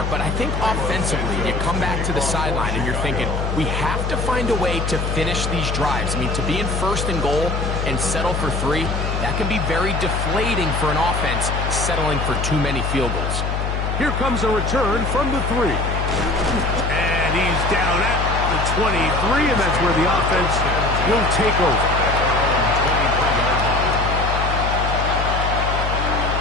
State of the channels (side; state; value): left; noise; hum, 1 dB below the sound